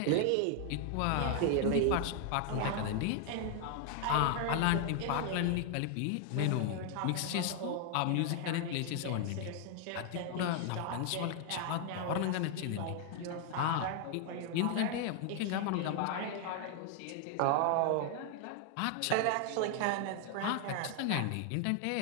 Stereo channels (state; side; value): different; both; correlation 0.00